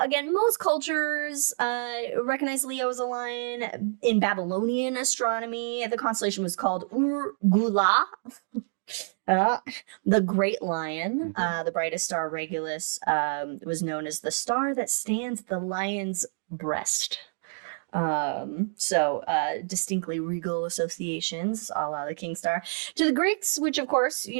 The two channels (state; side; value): silent; left; digital silence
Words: most cultures recognize Leo as a lion. In Babylonian astronomy, the constellation was called Ur-Gula. The Great Lion, the brightest star, Regulus, was known as the star that stands at the lion's breast. Distinctly regal associations, a la the King Star. To the Greeks, which of course,